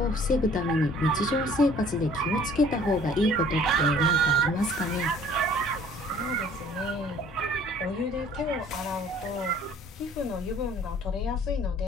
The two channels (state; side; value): normal; both; correlation 0.54